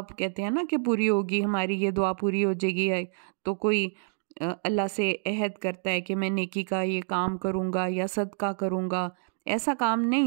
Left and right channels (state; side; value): silent; left; digital silence